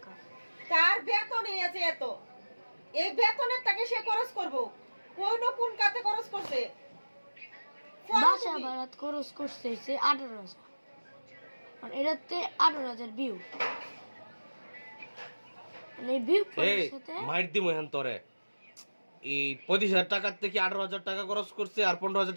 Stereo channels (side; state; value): both; inverted; correlation -1.00